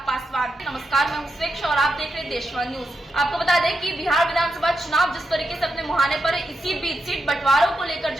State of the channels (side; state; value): both; normal; correlation 0.86